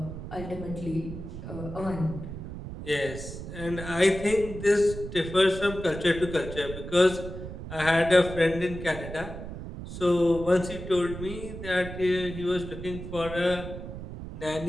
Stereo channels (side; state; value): right; noise; rumble, 9 dB below the sound